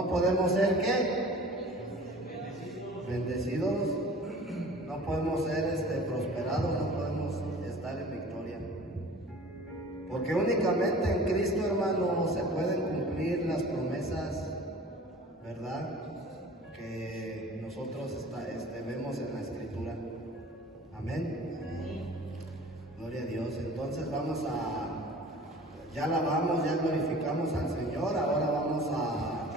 podemos ser, ¿qué? Bendecidos, no podemos ser prosperados, no podemos estar en victoria. Porque únicamente en Cristo, hermano, se pueden cumplir las promesas, ¿verdad?, que nosotros vemos en la Escritura. Amén. Gloria a Dios. Entonces ya alabamos, ya glorificamos al Señor. Ahora vamos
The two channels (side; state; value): both; normal; correlation 0.44